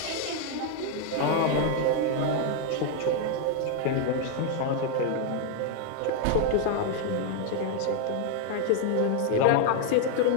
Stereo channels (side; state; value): both; different; correlation 0.00